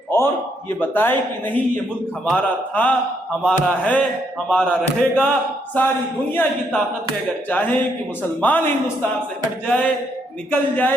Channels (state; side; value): normal; both; correlation 0.74